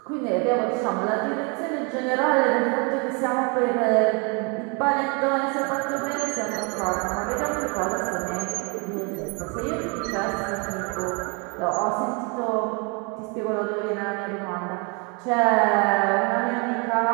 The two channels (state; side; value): quieter; left; 33.1 dB